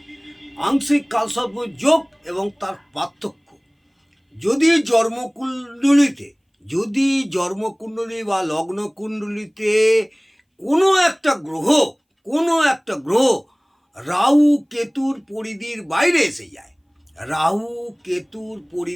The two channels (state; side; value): identical; both; correlation 1.00